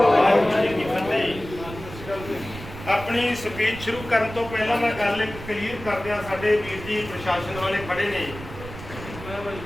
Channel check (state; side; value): noise; right; rumble, 13 dB below the sound